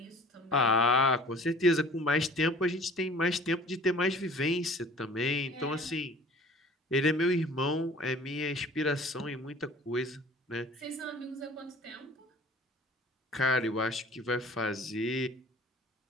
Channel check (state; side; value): normal; both; correlation 0.47